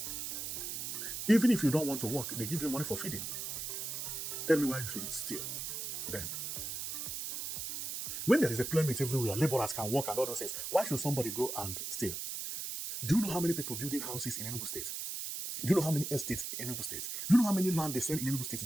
Even if you don't want to work, they give you money for feeding. Tell me why you should steal then. When there is employment everywhere, laborers can work and all those things, why should somebody go and steal? Do you know how many people building houses in Enugu State? Do you know how many estates in Enugu State? Do you know how many land they sell in Enugu State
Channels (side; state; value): right; noise; hiss, 4 dB below the sound